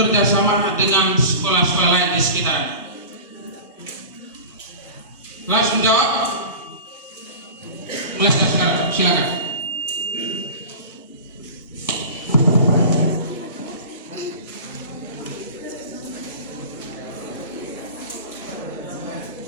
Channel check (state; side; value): inverted; both; correlation -0.34